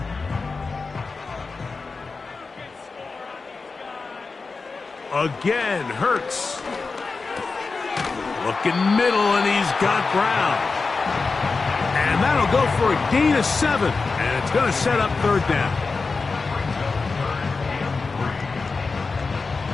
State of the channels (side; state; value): right; quieter; 4.2 dB